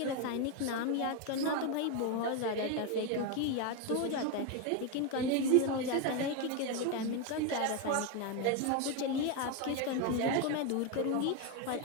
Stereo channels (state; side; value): different; both; correlation 0.02